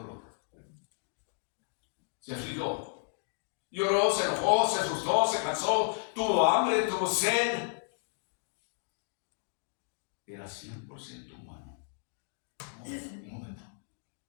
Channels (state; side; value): silent; right; digital silence